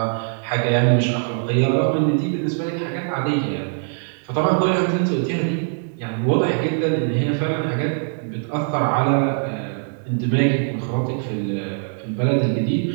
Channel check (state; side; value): silent; left; 64 dB below the other